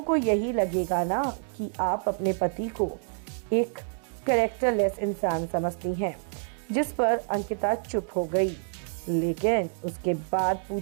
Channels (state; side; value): silent; left; 60 dB below the other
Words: को यही लगेगा ना कि आप अपने पति को एक कैरेक्टरलेस इंसान समझती हैं। जिस पर अंकिता चुप हो गई। लेकिन उसके बाद